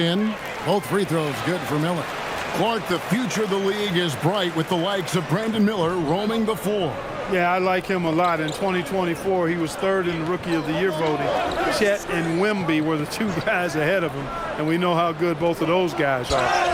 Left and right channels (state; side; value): identical; both; correlation 1.00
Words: Both free throws good for Miller. Clark, the future of the league is bright with the likes of Brandon Miller roaming the floor. Yeah, I like him a lot. In 2024, he was third in the Rookie of the Year voting. Chet and Wemby were the two guys ahead of him, and we know how good both of those guys are.